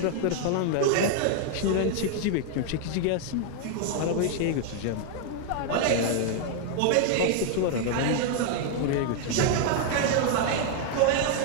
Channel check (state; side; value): different; both; correlation 0.00